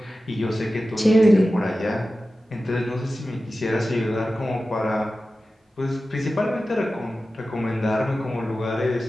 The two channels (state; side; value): normal; both; correlation 0.94